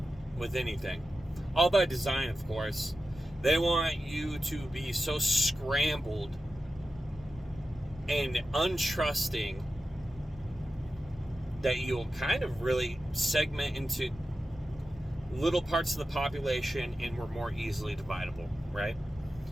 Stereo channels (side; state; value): both; normal; correlation 0.92